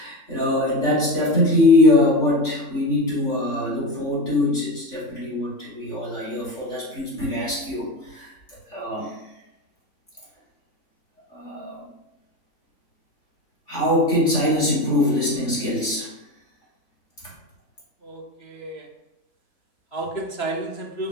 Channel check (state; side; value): late; right; 3.5 ms